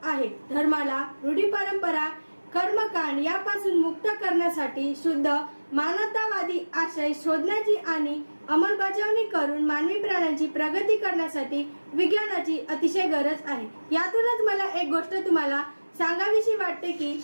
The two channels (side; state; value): both; inverted; correlation -1.00